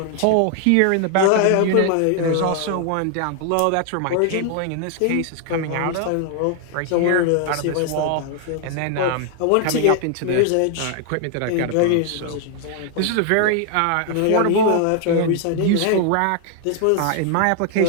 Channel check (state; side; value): different; both; correlation 0.00